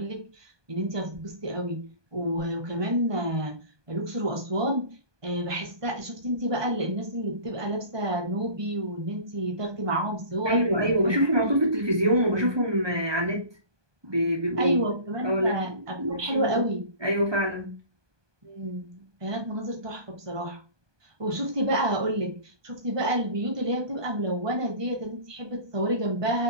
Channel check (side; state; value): left; late; 1.2 ms